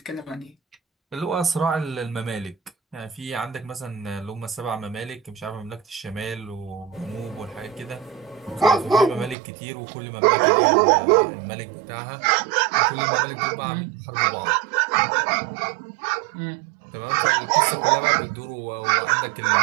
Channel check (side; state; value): left; drops out; at 9.3 s